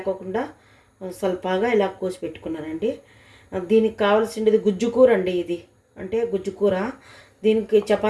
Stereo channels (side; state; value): both; identical; correlation 1.00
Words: స్వల్పగా ఇలా కోసి పెట్టుకున్నానండి. దీనికి కావాల్సింది గుజ్జు కూర అండి. ఇది అంటే గుజ్జు కూర దీనికి